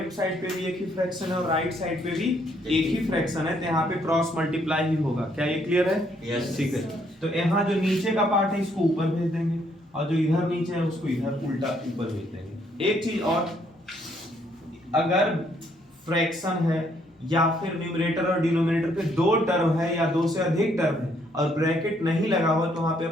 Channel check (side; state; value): both; normal; correlation 0.69